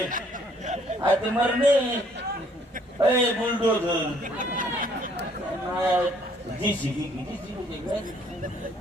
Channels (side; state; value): both; normal; correlation 0.63